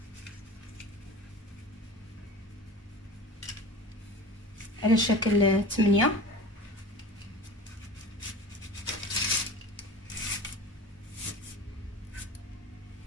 على شكل 8.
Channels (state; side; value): normal; both; correlation 0.37